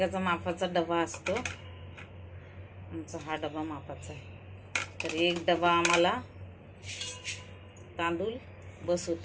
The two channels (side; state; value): both; identical; correlation 1.00